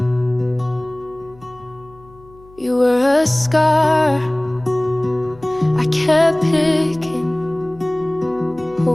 You were a scar I kept picking,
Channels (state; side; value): noise; left; hum, 25 dB below the sound